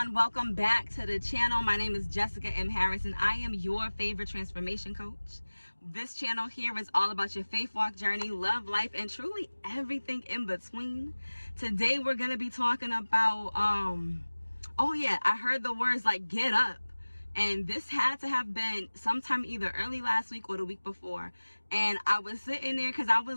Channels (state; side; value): inverted; both; correlation -1.00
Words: Welcome back to the channel. My name is Jessica M. Harris and I am your favorite transformation coach. This channel here is all about your faith walk journey, love, life, and truly everything in between. Today we're going to be talking about, I heard the words like get up. And this had to have been sometime either early last week or the week before. And I was sitting there because I